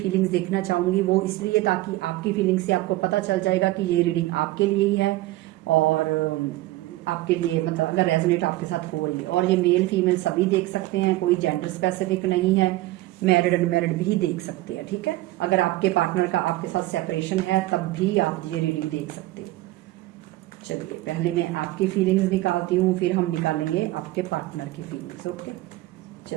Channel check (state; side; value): quieter; left; 17.7 dB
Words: देखना चाहूंगी। वो इसलिए ताकि आपकी फीलिंग्स से आपको पता चल जाएगा कि ये रीडिंग आपके लिए ही है, और आपके लिए मतलब अगर रेजोनेट आपके साथ हो रही है। और ये मेल फीमेल सभी देख सकते हैं, कोई जेंडर स्पेसिफिक नहीं है, मैरिड अनमैरिड भी देख सकते हैं। ठीक है, अगर आपके पार्टनर का आपके साथ सेपरेशन है तब भी आप ये रीडिंग देख सकते हो। चलिए, पहले मैं आपकी फीलिंग्स निकालती हूँ, फिर हम निकालेंगे आपके पार्टनर की फीलिंग्स। ओके,